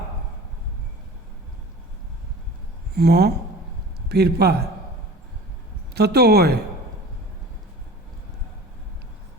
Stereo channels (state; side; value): normal; both; correlation 0.40